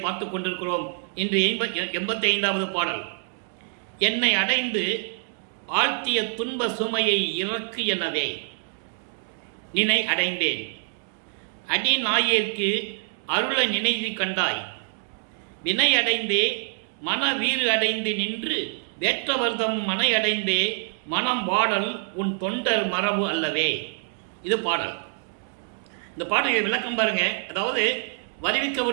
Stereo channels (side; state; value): left; silent; digital silence